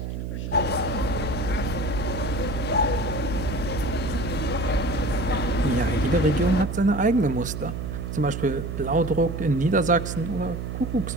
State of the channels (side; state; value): right; noise; hum, 5 dB below the sound